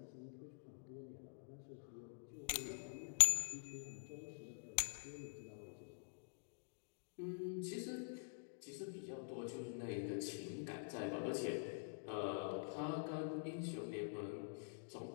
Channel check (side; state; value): right; silent; digital silence